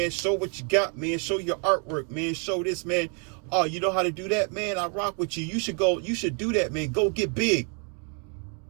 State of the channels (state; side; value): quieter; left; 38.9 dB